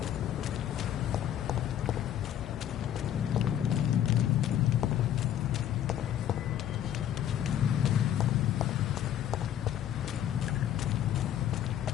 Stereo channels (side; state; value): right; quieter; 10.7 dB